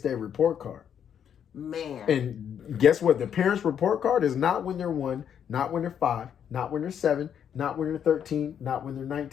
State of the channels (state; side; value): quieter; right; 8.6 dB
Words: report card. Man. And guess what? The parent's report card is not when they're 1, not when they're 5, not when they're 7, not when they're 13, not when they're